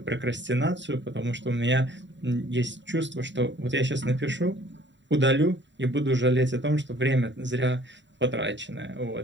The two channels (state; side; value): late; left; 0.53 ms